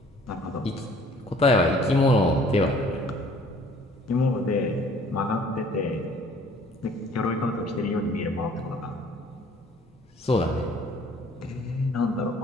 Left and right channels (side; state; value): both; normal; correlation 0.55